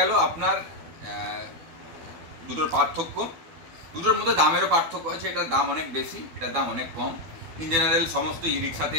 আপনার দুটোর পার্থক্য। দুটোর মধ্যে দামেরও পার্থক্য আছে, এটার দাম অনেক বেশি, এটার দাম অনেক কম। ইন জেনারেল সমস্ত ই রিক্সাতে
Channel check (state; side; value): late; left; 12 ms